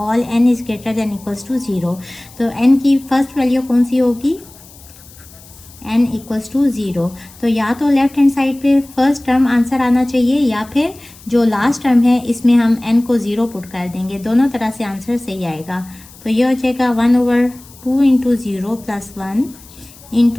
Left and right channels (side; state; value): left; noise; hiss, 22 dB below the sound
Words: n is greater than equals to 0। तो n की फर्स्ट वैल्यू कौन सी होगी? n equals to 0। तो या तो लेफ्ट हैंड साइड पे फर्स्ट टर्म आंसर आना चाहिए या फिर जो लास्ट टर्म है इसमें हम n को 0 पुट कर देंगे। दोनों तरह से आंसर सही आएगा। तो ये हो जाएगा 1/2 into 0 plus 1